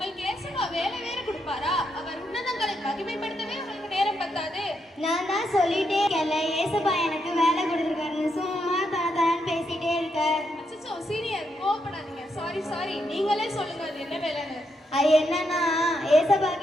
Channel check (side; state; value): both; normal; correlation 0.80